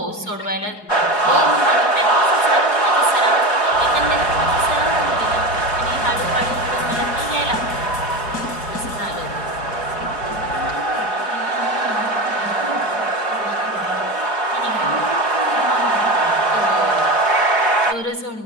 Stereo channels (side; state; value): right; late; 4.8 ms